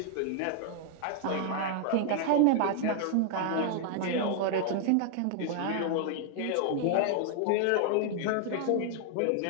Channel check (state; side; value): different; both; correlation 0.00